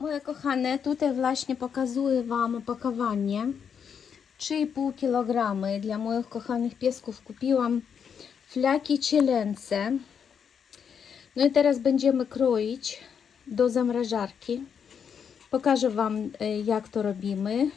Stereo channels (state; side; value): quieter; right; 7.2 dB